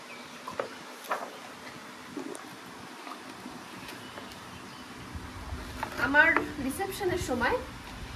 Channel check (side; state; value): both; identical; correlation 1.00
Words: আমার রিসেপশনের সময়